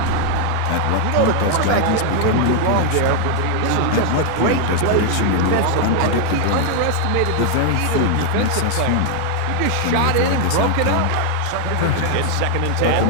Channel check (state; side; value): different; both; correlation 0.00